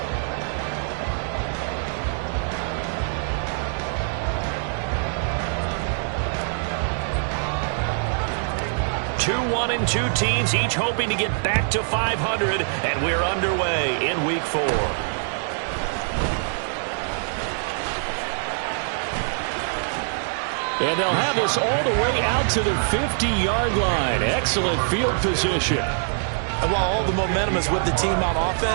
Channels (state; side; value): silent; left; digital silence